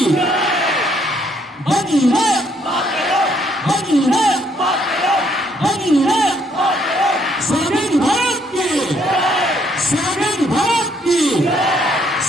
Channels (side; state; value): both; normal; correlation 0.69